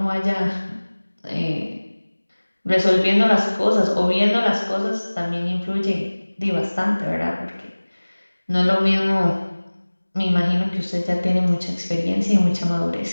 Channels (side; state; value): both; inverted; correlation -1.00